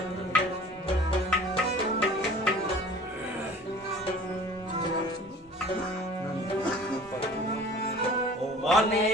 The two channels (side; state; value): both; normal; correlation 0.46